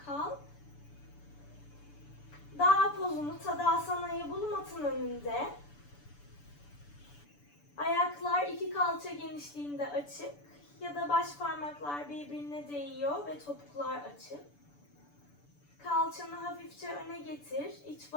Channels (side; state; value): right; late; 6.9 ms